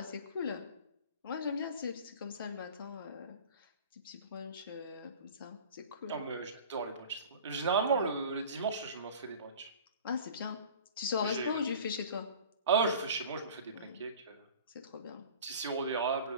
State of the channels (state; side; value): inverted; both; correlation -0.41